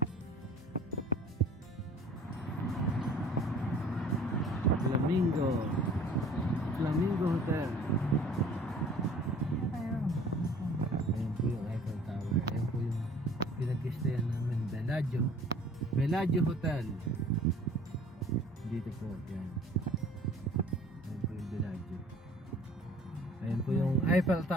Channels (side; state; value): both; normal; correlation 0.49